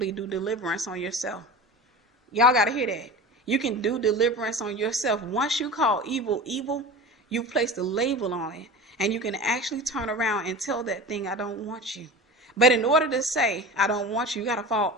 do deliverance on yourself. Y'all got to hear that. You can do deliverance on yourself. Once you call evil, evil, you place the label on it. And you can actually turn around and tell that thing, I don't want you. But in order to say, I don't want you, you got to fall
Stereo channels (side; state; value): both; normal; correlation 0.33